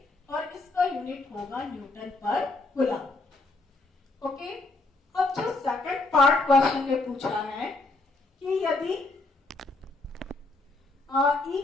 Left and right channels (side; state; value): right; quieter; 3.2 dB